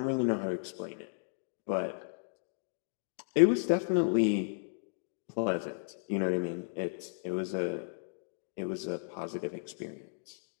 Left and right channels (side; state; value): right; silent; digital silence